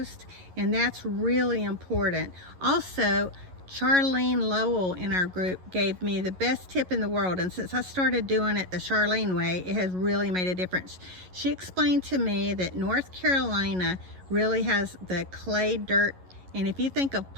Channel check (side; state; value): left; late; 11 ms